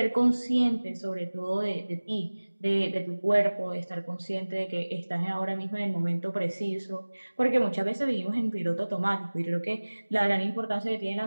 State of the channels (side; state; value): both; inverted; correlation -1.00